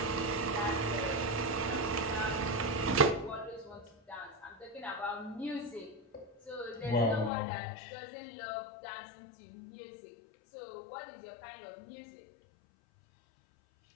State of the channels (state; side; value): drops out; right; at 7.3 s